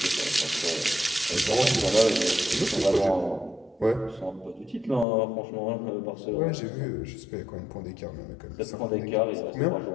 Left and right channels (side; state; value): right; drops out; at 5.1 s